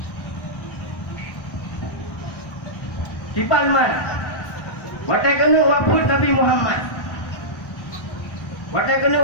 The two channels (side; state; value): right; late; 1.1 ms